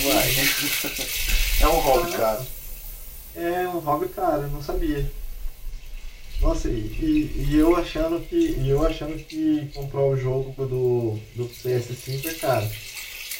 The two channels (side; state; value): both; identical; correlation 1.00